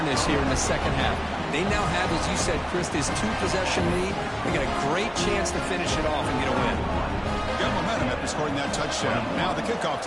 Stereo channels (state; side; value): identical; both; correlation 1.00